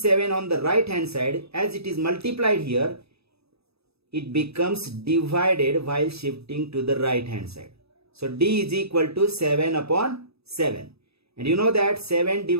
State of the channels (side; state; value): left; late; 0.78 ms